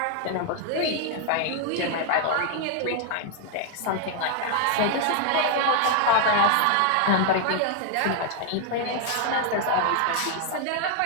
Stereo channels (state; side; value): different; both; correlation 0.00